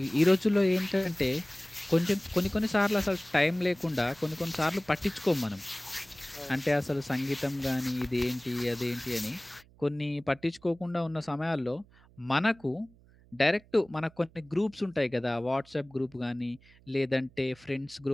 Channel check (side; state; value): right; noise; hum, 27 dB below the sound